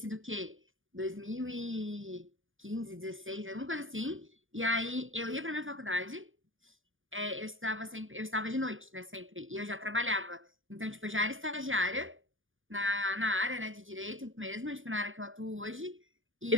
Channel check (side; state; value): left; late; 0.58 ms